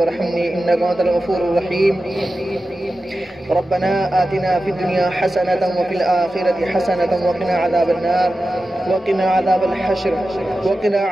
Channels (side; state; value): both; normal; correlation 0.93